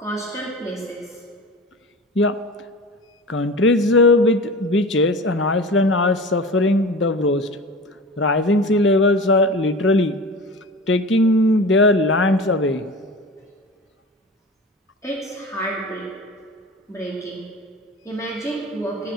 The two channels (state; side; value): normal; both; correlation 0.34